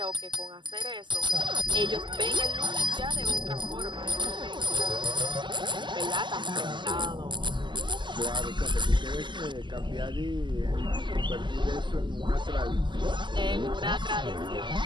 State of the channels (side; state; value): left; late; 0.22 ms